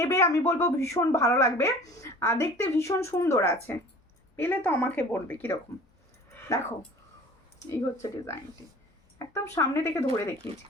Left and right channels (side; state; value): both; normal; correlation 0.45